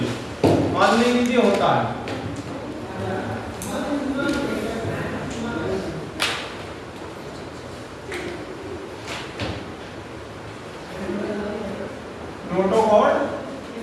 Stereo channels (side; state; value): both; identical; correlation 1.00